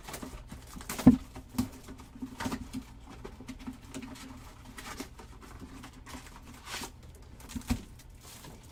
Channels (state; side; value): identical; both; correlation 1.00